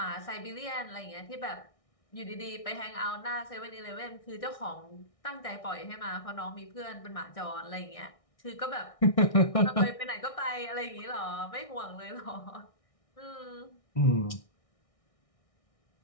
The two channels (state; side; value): late; right; 1.6 ms